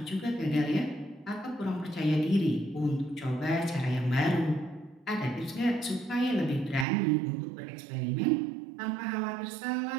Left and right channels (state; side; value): drops out; left; at 6.9 s